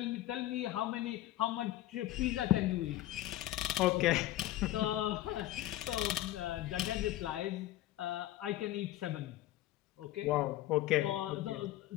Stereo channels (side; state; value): right; quieter; 15.0 dB